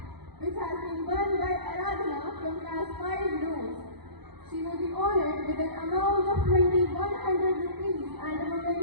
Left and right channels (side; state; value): left; late; 0.98 ms